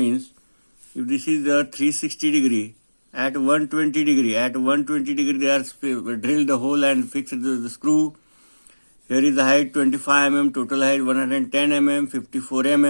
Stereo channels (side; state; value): both; inverted; correlation -1.00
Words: if this is the 360 degree. At 120 degree, they are drilled the hole and fixed the screw. Here is the height 25 mm, total height 110 mm, 54